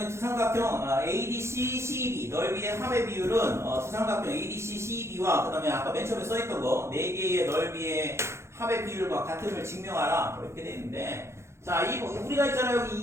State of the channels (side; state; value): left; late; 0.13 ms